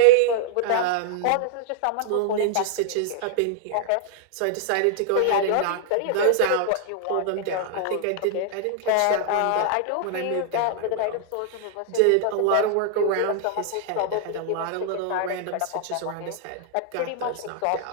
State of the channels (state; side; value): different; both; correlation -0.01